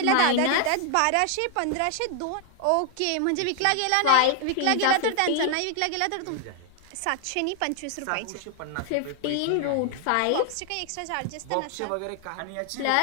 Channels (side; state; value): both; different; correlation 0.00